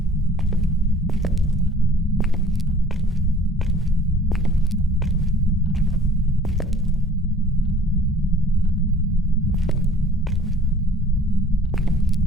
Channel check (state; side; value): normal; both; correlation 0.52